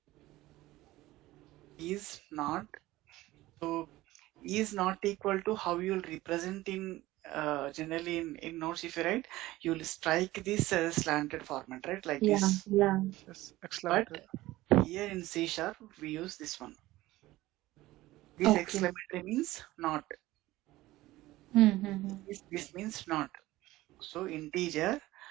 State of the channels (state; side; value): quieter; left; 17.5 dB